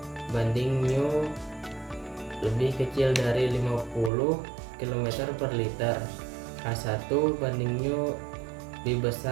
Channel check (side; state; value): left; drops out; at 4.1 s